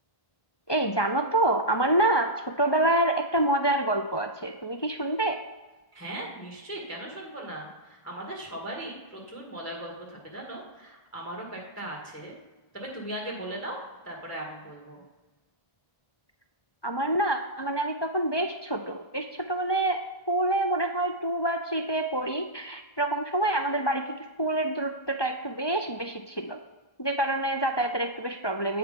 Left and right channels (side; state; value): right; late; 1.2 ms